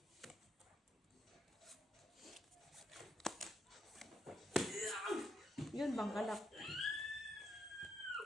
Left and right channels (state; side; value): normal; both; correlation 0.79